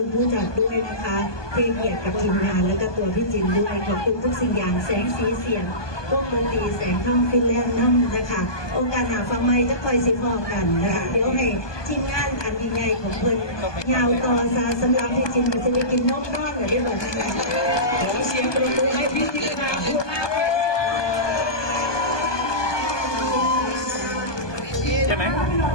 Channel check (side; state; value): right; late; 1.2 ms